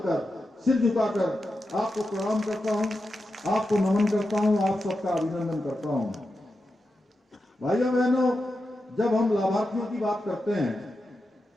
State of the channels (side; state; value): both; normal; correlation 0.89